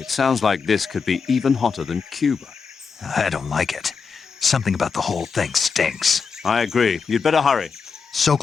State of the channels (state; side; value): quieter; right; 5.5 dB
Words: sounds like this could be even hotter than Cuba. I don't like it. Something about the whole thing stinks. I agree. You'd better hurry.